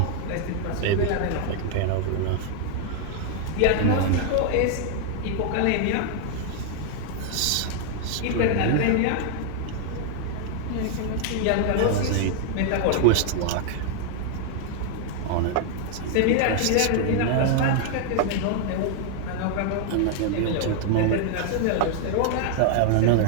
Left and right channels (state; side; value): different; both; correlation 0.00